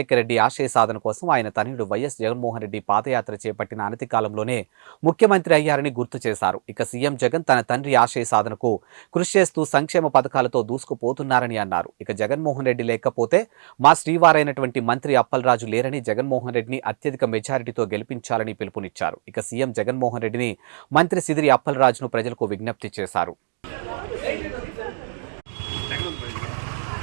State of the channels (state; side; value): silent; left; digital silence